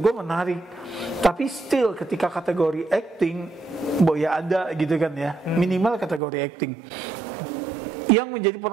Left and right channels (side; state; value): left; drops out; at 6.2 s